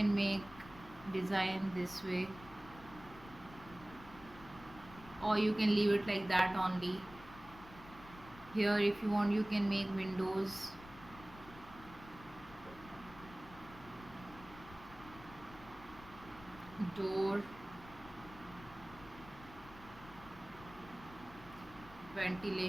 make design this way, or you can leave it like that only. Here if you want, you can make windows. door,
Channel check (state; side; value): noise; left; rumble, 18 dB below the sound